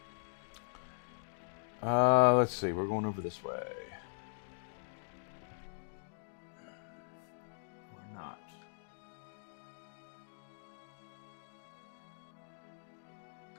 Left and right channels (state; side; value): silent; right; digital silence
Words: Let's see. We're going over this way. We're not.